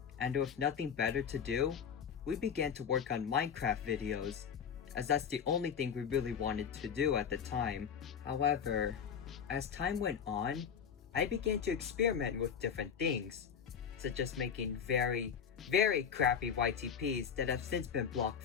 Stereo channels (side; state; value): right; quieter; 7.4 dB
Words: And with nothing better to do, we began to work on Minecraft videos, as that's the only thing we really wanted to do at the time. However, as time went on, I began to experiment with different things, such as making very crappy YTPs that have since been blocked